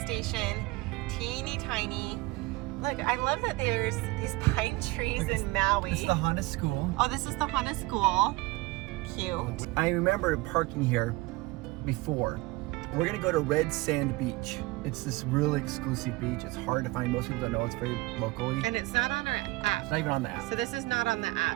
station, teeny tiny. Look, I love that there's these pine trees in Maui. This is the Hana School. Oh, this is the Hana School. Cute. I remember parking here before. We're gonna go to Red Sand Beach. It's this really exclusive beach. It's hard to find. Most people don't know. It's very locally. And it's not on our app. It's not even on the app. So this is not on the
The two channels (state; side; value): quieter; left; 21.6 dB